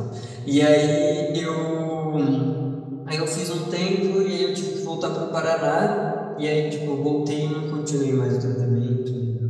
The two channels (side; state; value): both; identical; correlation 1.00